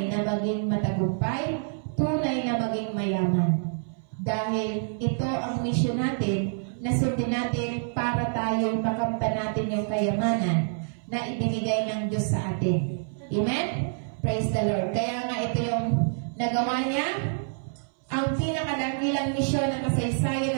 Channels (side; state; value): left; silent; 60 dB below the other